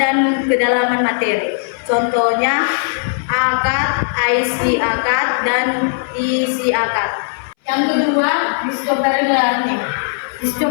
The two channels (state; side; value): silent; right; 64 dB below the other